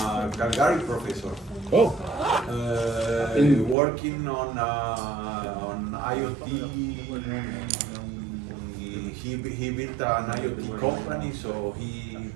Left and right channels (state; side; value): drops out; left; at 3.8 s